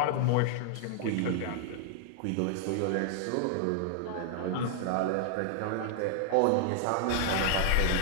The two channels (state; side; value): different; both; correlation 0.00